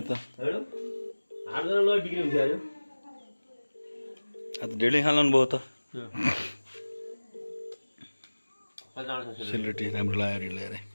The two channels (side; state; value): both; inverted; correlation -1.00